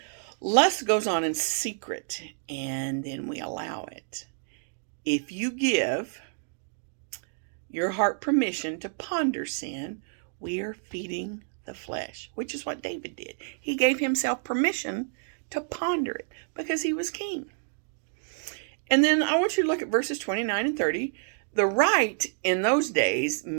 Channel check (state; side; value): silent; left; digital silence